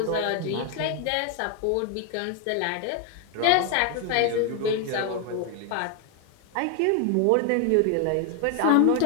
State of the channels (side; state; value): both; different; correlation 0.01